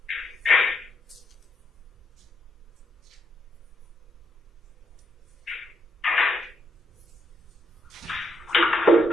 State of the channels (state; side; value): normal; both; correlation 0.76